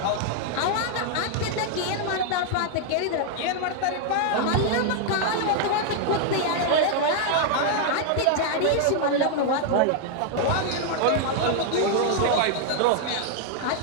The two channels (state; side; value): different; both; correlation 0.00